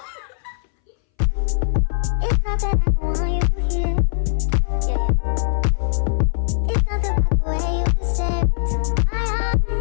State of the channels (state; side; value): silent; right; 62 dB below the other